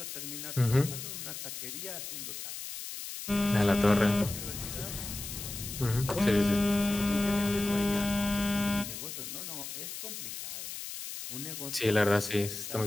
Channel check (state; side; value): noise; left; hiss, 8 dB below the sound